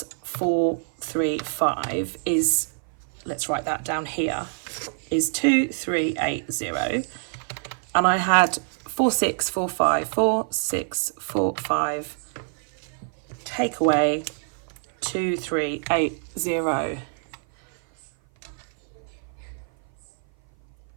435 is, let's write that down here, is 2380. And I had 4645 take away 2380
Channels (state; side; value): silent; left; 56 dB below the other